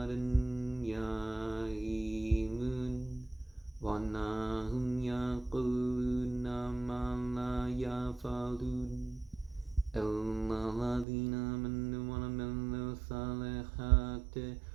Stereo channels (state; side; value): drops out; left; at 11.1 s